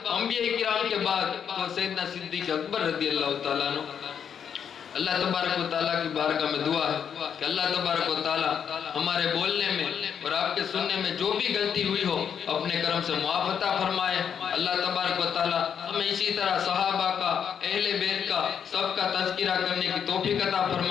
انبیاء کرام کے بعد، تو سیدنا صدیق اکبر رضی اللہ تعالیٰ عنہ. اللہ تبارک و تعالیٰ کی بارگاہ میں دعا ہے کہ اللہ تبارک و تعالیٰ ہمارے بولنے میں اور آپ کے سننے میں جو بھی غلطی ہوئی ہو اپنے کرم سے معاف عطا فرمائے. اللہ تبارک و تعالیٰ ہمیں اسی طرح صحابہ کا، اہل بیت کا، سب کا تذکرہ کرنے کی توفیق عطا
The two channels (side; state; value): right; quieter; 7.8 dB